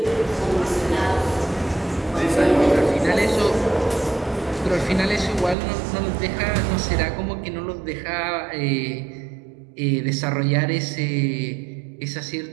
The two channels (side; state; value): left; drops out; at 5.6 s